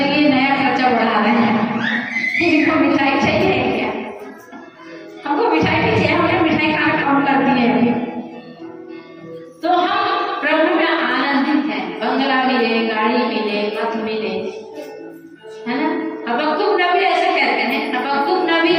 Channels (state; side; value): identical; both; correlation 1.00